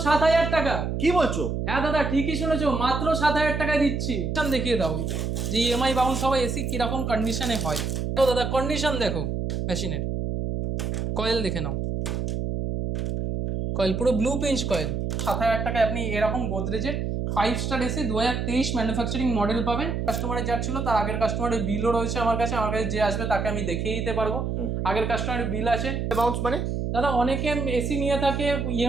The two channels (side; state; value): right; noise; hum, 2 dB below the sound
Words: 7,000 টাকা। কি বলছো? হ্যাঁ দাদা ঠিকই শুনেছো, মাত্র 7,000 টাকায় দিচ্ছি। দেখিয়ে দাও যে ইএমআই বাউন্স হওয়া এসি কিরকম কন্ডিশনে হয়। তো দাদা কন্ডিশন দেখো মেশিনের, কয়েল দেখে নাও, কয়েল পুরো ব্লু পিঞ্চ কয়েল। 7,000 টাকায় আপনি এরকম গোদরেজের 5 স্টার এসি 2023 ম্যানুফ্যাকচারিং মডেল পাবেন। কাস্টমারের যার ছিল তার আগের কাস্টমারের বিলও রয়েছে আমার কাছে যে আসবে তাকে আমি দেখিয়ে দিতে পারবো। আগের কাস্টমারের বিল আছে। বাউন্স মানে দাদা অনেকে এসি নিয়ে থাকে